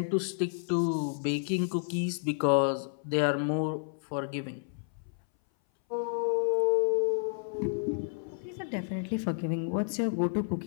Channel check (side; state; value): right; silent; 57 dB below the other